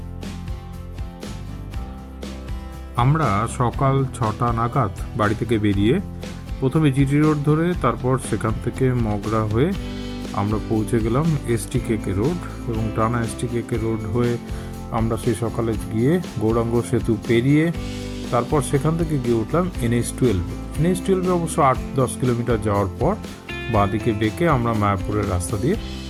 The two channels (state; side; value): identical; both; correlation 1.00